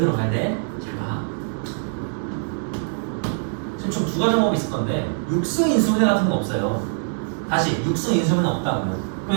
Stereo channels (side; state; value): left; silent; digital silence